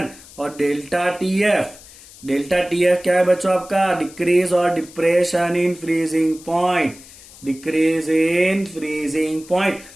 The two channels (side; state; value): left; noise; hiss, 20 dB below the sound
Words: और डेल्टा TF क्या है बच्चों आपका? डिक्रीज और depression in freezing point. Decrease in freezing point.